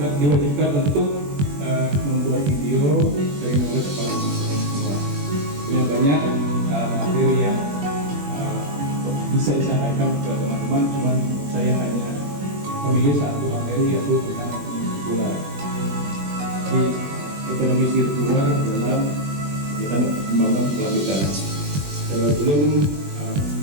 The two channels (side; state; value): left; late; 21 ms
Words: diwajibkan untuk membuat video dari knowledge kepada teman-teman semua. Punya banyak materi yang bisa disampaikan ke teman-teman, cuman saya hanya memilih satu materi yaitu tentang ekonomi sirkular. Di ekonomi sirkular dalam kita membangun kelanjutan. Sebelum